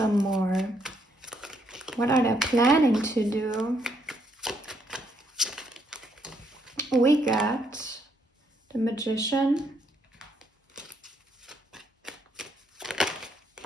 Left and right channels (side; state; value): both; normal; correlation 0.73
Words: more. What are they planning to do? We got the Magician,